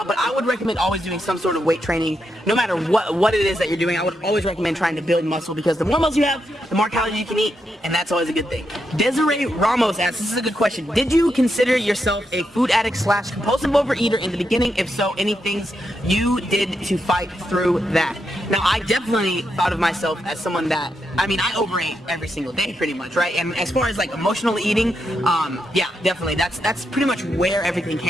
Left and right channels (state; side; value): normal; both; correlation 0.83